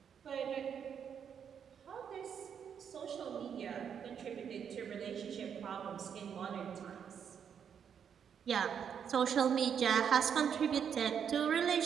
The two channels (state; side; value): quieter; left; 7.8 dB